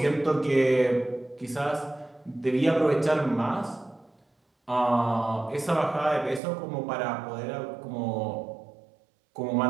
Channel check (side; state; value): left; drops out; at 6.4 s